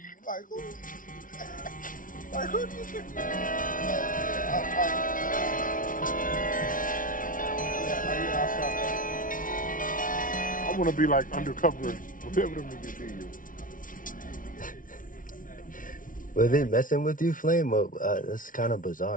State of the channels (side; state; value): right; late; 0.39 ms